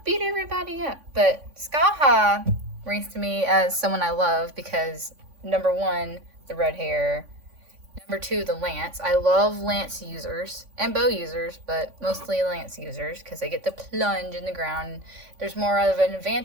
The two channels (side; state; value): left; late; 3.5 ms